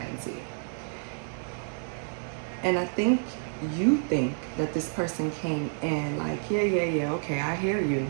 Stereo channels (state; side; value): silent; left; 55 dB below the other